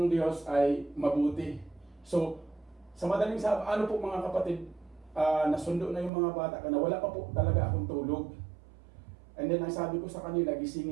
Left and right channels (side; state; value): left; drops out; at 6.1 s